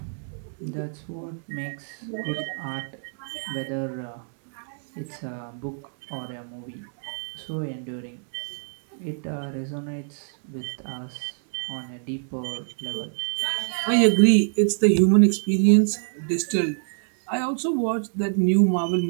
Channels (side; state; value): left; silent; digital silence